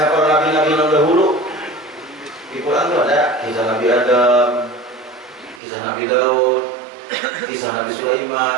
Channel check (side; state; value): left; drops out; at 5.6 s